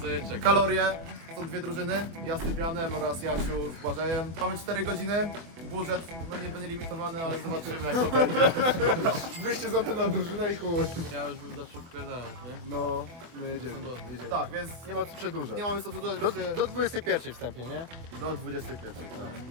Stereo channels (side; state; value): left; late; 24 ms